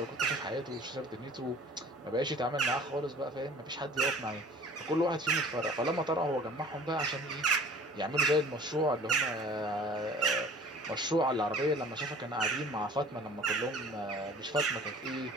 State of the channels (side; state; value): both; normal; correlation 0.46